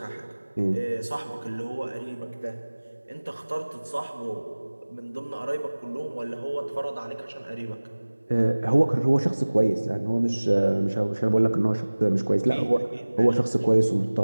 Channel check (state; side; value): inverted; both; correlation -1.00